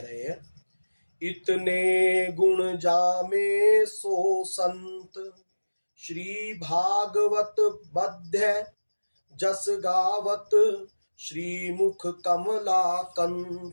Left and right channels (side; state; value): both; inverted; correlation -1.00